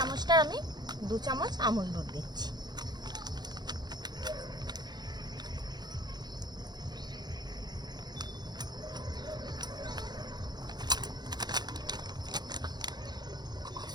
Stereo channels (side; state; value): left; late; 0.20 ms